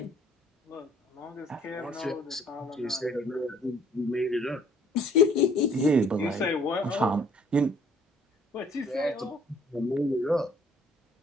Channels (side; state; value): both; normal; correlation 0.59